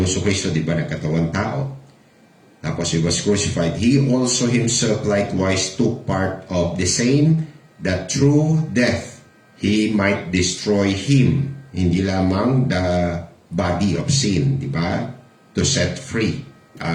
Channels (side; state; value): both; identical; correlation 1.00